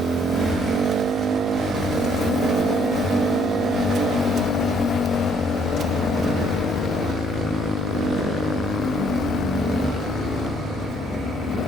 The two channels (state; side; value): normal; both; correlation 0.65